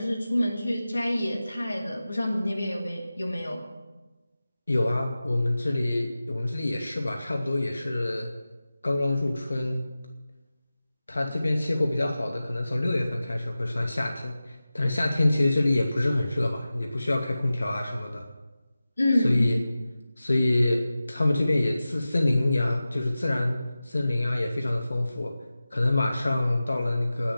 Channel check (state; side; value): inverted; both; correlation -0.95